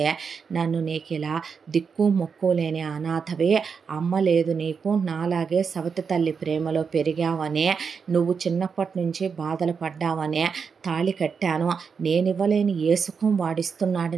నన్ను నీకు ఇలా దిక్కు మొక్కు లేని అనాథవే, అమ్మ లేదు నీకు, నాలాగే సవతి తల్లి ప్రేమలో పెరిగావనే, నువ్వు చిన్నప్పటి నుంచి బాధలు పడ్డావనే తాళి కట్టాను, నేనివ్వలేని ఏ సుఖం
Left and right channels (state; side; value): quieter; left; 5.9 dB